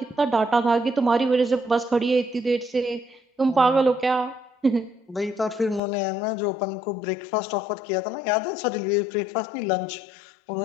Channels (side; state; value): right; drops out; at 5.8 s